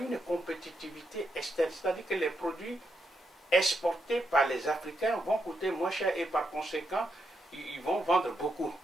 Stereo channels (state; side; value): normal; both; correlation 0.81